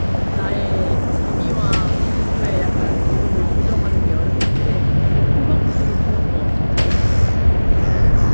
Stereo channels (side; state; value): both; inverted; correlation -1.00